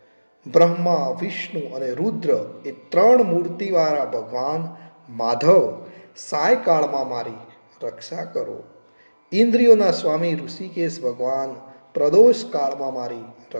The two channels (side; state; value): both; inverted; correlation -1.00